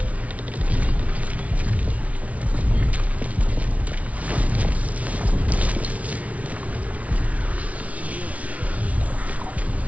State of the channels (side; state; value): left; late; 0.067 ms